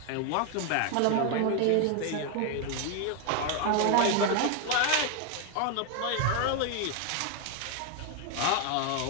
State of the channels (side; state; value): both; different; correlation 0.01